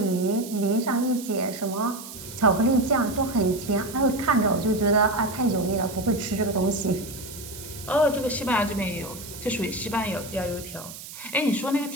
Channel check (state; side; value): noise; right; hiss, 13 dB below the sound